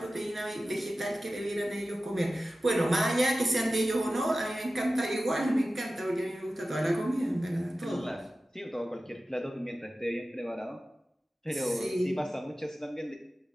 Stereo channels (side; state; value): both; normal; correlation 0.95